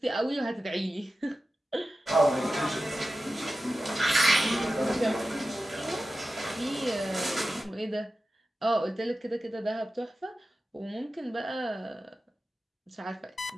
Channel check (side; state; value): both; normal; correlation 0.93